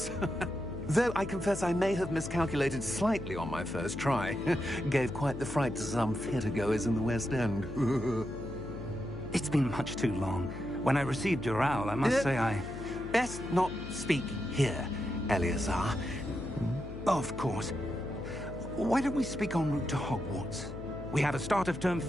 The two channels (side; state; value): left; noise; hum, 10 dB below the sound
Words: Though I confess I may have miscalculated slightly on my first try. Gave quite the fright to some theatre-goers in the West End. It's been much too long. When I received your owl, I must say I... Best not speak here, Eleazar. Of course. Why don't we speak en route to Hogwarts? We have a start-of-term